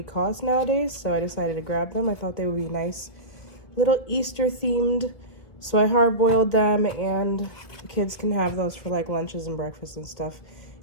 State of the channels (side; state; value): right; late; 1.7 ms